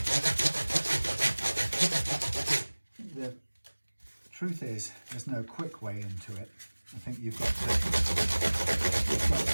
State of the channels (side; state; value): both; inverted; correlation -1.00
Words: the truth is, there's no quick way into it. I think you've got